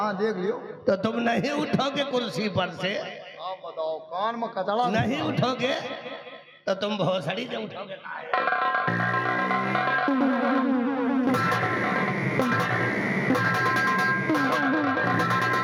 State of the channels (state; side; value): identical; both; correlation 1.00